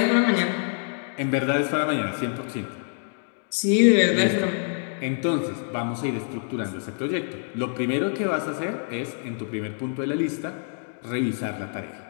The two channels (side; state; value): right; silent; 61 dB below the other